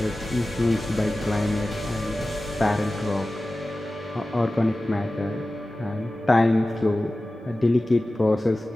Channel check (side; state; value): both; normal; correlation 0.96